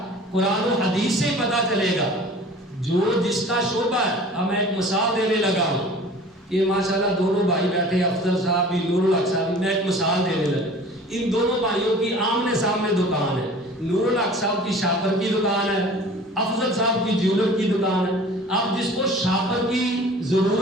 قرآن و حدیث سے ہی پتہ چلے گا، جو جس کا شعبہ ہے۔ اب میں ایک مثال دینے لگا ہوں کہ ماشاءاللہ دونوں بھائی بیٹھے، افضل صاحب بھی، نور الحق صاحب بھی، میں ایک مثال دینے لگا۔ ان دونوں بھائیوں کی آمنے سامنے دکان ہے، نور الحق صاحب کی شاپر کی دکان ہے، افضل صاحب کی جیولر کی دکان ہے۔ اب جس کو شاپر کی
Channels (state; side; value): normal; both; correlation 0.45